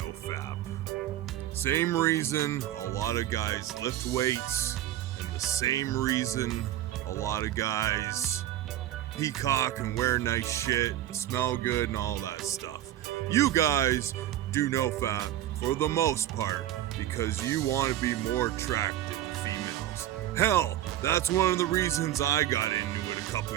Fap. Same reason a lot of guys lift weights, and the same reason a lot of guys peacock and wear nice shit, and smell good and all that stuff. You guys do No Fap for the most part because you want to be more attractive to females. Hell, that's one of the reasons I got into it a couple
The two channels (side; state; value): left; quieter; 13.0 dB